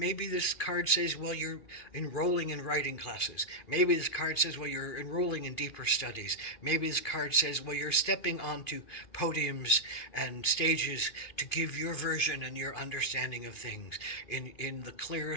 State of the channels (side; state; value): right; late; 2.5 ms